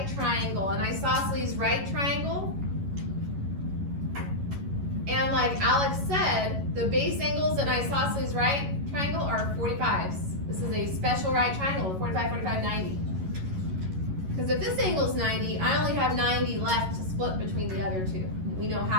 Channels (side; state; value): left; late; 11 ms